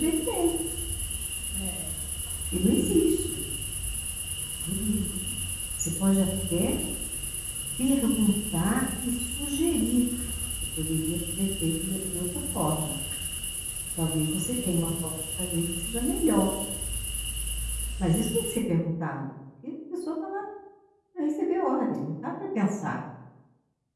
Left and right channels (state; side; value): identical; both; correlation 1.00